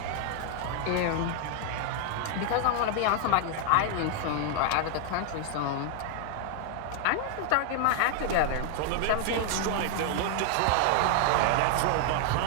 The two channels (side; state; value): both; different; correlation 0.00